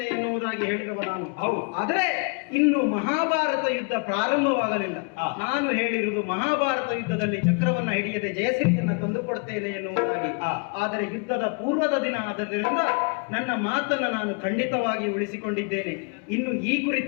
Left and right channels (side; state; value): right; quieter; 35.2 dB